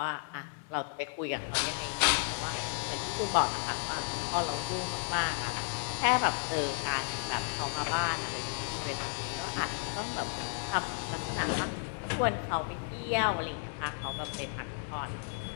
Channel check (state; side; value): silent; right; digital silence